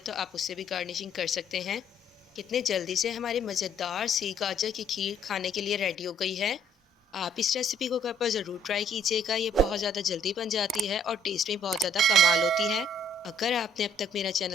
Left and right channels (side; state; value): both; normal; correlation 0.62